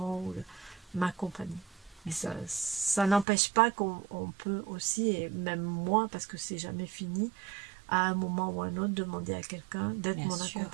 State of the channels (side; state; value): left; drops out; at 3.2 s